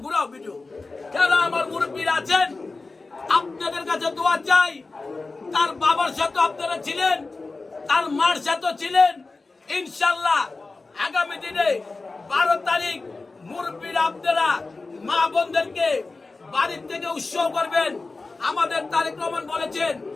ঘুরাও ভিডিও, যারা আমার মুরব্বীরা আছেন, আপনাদের কাছে দোয়া চাই। তার বাবার সাথে আপনারা ছিলেন, তার মার সাথে ছিলেন। ইনশাল্লাহ আগামী দিনে 12 তারিখ মুরব্বীরা আপনারা মা বোনদেরকে বাড়ির থেকে উৎসব করবেন। আমাদের তারেক রহমান বলেছেন,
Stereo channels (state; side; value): quieter; right; 3.7 dB